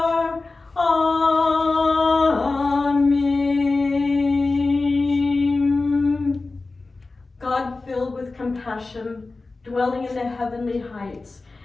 passion, dwelling in the heavenly heights.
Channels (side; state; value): right; quieter; 3.6 dB